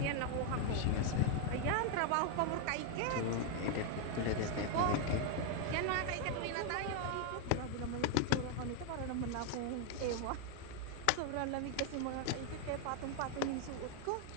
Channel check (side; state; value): both; different; correlation 0.00